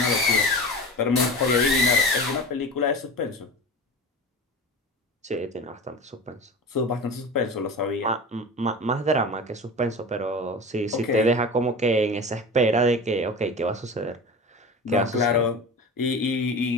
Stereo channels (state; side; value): normal; both; correlation 0.32